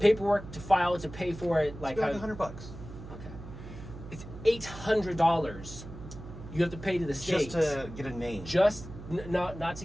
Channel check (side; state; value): right; noise; hum, 13 dB below the sound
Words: to file it, to pay for it, like $100. Okay, it's $800. You have to pay to the state just to get a name. Just not to